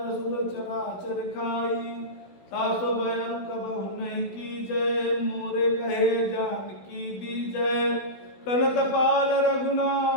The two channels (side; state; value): right; late; 16 ms